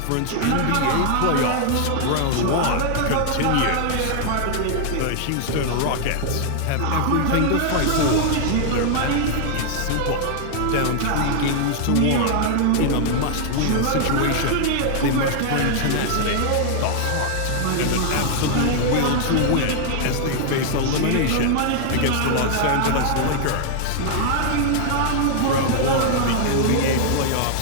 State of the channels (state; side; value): different; both; correlation 0.00